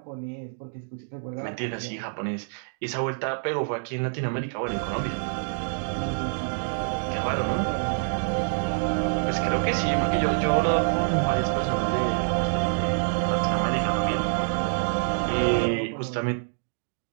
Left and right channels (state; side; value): silent; left; digital silence